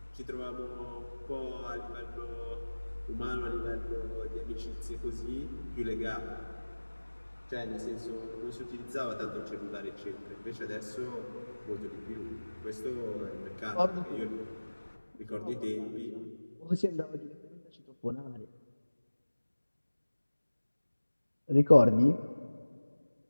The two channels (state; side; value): inverted; both; correlation -1.00